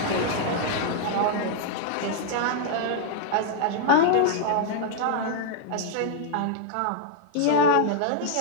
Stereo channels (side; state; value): both; different; correlation -0.01